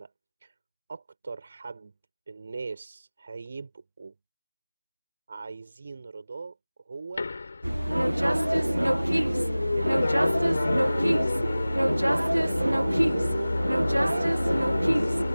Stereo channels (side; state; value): both; inverted; correlation -0.98